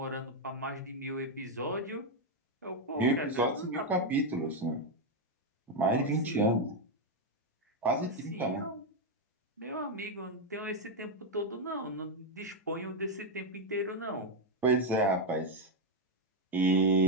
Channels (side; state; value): both; normal; correlation 0.03